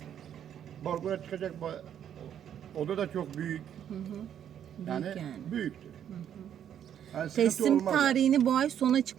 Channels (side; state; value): left; quieter; 9.6 dB